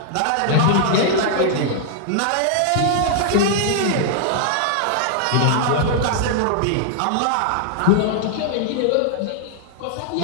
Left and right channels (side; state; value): both; different; correlation -0.01